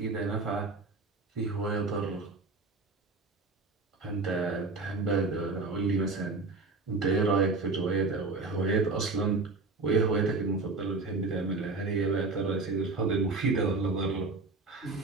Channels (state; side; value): quieter; left; 3.7 dB